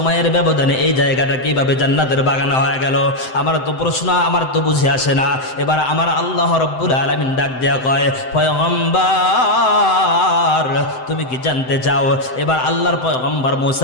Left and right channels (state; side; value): late; right; 7.8 ms